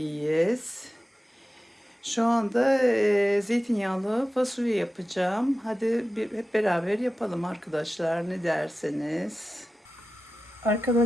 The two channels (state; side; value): normal; both; correlation 0.94